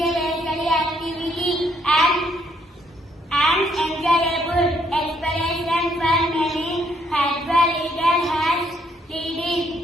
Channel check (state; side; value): normal; both; correlation 0.70